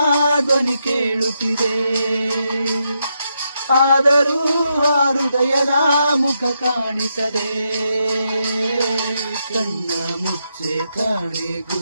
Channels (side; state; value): both; inverted; correlation -0.82